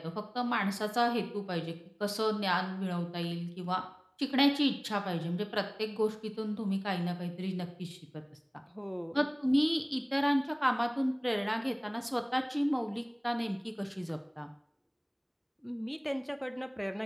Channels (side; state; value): both; identical; correlation 1.00